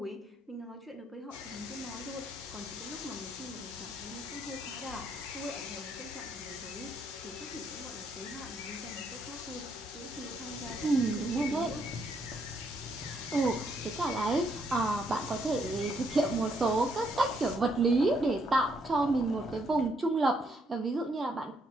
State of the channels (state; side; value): normal; both; correlation 0.73